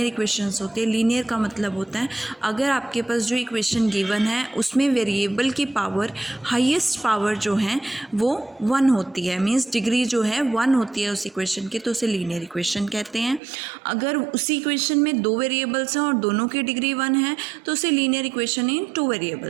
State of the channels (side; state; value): left; drops out; at 13.4 s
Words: इक्वेशंस होते हैं। लीनियर का मतलब होता है अगर आपके पास जो इक्वेशन गिवन है उसमें वेरिएबल की पावर हाईएस्ट पावर जो है वो 1 होती है, मीन्स डिग्री जो है 1 होती है उस इक्वेशन की, तो उसे लीनियर इक्वेशन कहते हैं। अगर उसी इक्वेशन में 2 वेरिएबल्स हैं और दोनों की डिग्री 1 है तो उसे लीनियर इक्वेशन इन 2